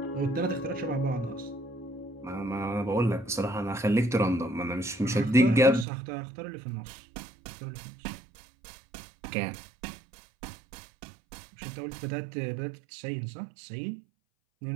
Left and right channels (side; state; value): left; drops out; at 5.9 s